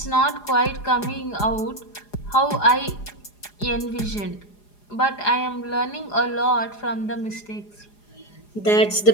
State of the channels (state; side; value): late; right; 4.9 ms